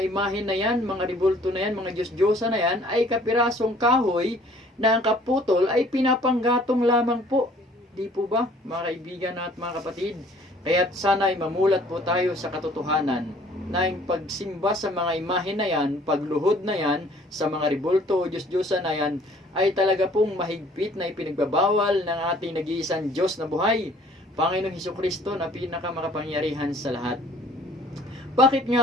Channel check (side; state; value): both; normal; correlation 0.56